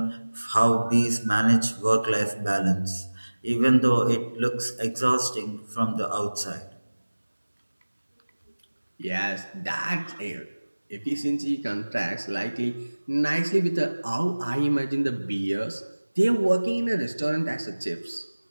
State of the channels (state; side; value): inverted; both; correlation -1.00